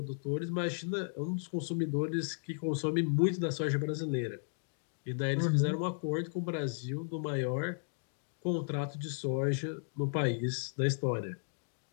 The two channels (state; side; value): silent; right; digital silence